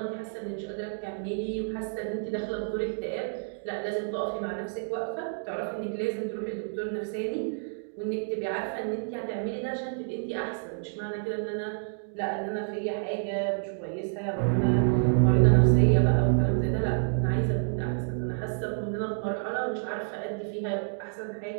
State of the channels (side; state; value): left; silent; digital silence